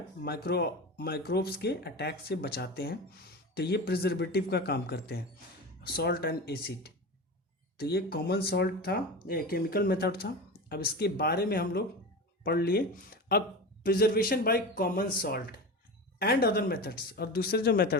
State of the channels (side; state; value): both; normal; correlation 0.27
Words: माइक्रोब्स के अटैक से बचाते हैं। तो ये प्रिजर्वेटिव का काम करते हैं, सॉल्ट एंड एसिड। तो ये कॉमन सॉल्ट था, ये केमिकल मेथड था। अब इसके बारे में हम लोग पढ़ लिए। अब preservation by common salt and other methods, और दूसरे जो